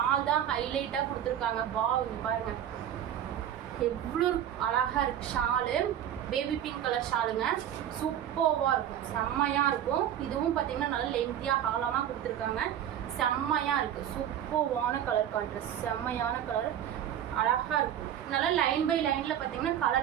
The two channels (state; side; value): quieter; left; 10.4 dB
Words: தான் ஹைலைட்டாக கொடுத்துருக்காங்க. இங்கே பாருங்கள் எவ்வளோ அழகாக இருக்குது ஷாலு. பேபி பிங்க் கலர் ஷாலுங்க. சூப்பராக இருக்கும். செம்மையாக இருக்கும். இதுவும் பார்த்தீங்கன்னா நல்லா லென்த்தியாக அகலமாக கொடுத்துருக்காங்க. செம்மையாக இருக்குது. சூப்பரான கலர் கான்ட்ராஸ்ட். செம்மையான கலர். அழகாக இருக்கும். நல்லா லைன் பை லைனில் பார்த்தீங்கன்னா